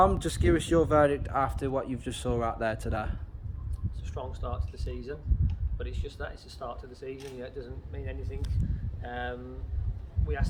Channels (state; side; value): identical; both; correlation 1.00